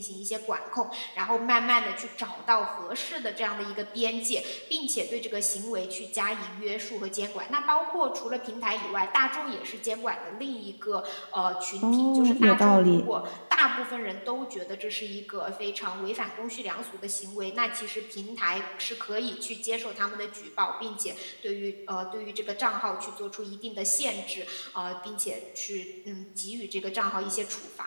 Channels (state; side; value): inverted; both; correlation -1.00